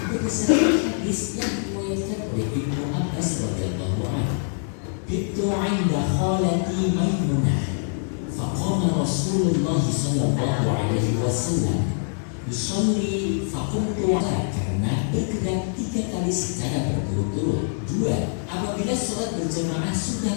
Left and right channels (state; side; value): silent; right; digital silence